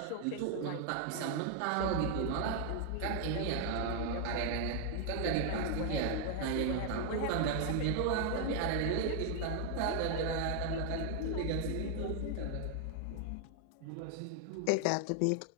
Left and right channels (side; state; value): both; different; correlation 0.00